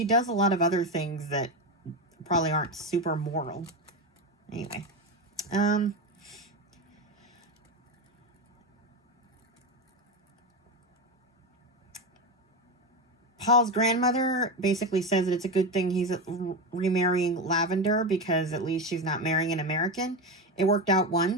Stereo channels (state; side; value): normal; both; correlation 0.16